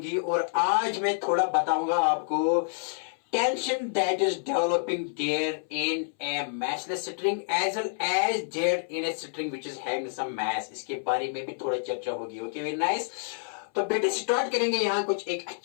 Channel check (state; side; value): silent; right; 59 dB below the other